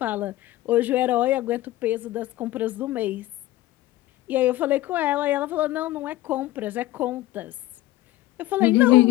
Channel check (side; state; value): right; quieter; 16.1 dB